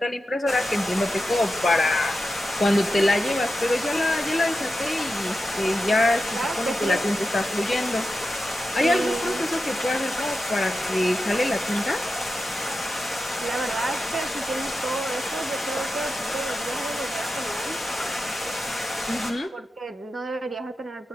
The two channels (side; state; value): both; normal; correlation 0.91